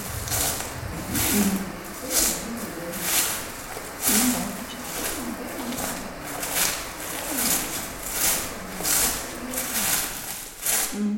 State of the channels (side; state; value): both; identical; correlation 1.00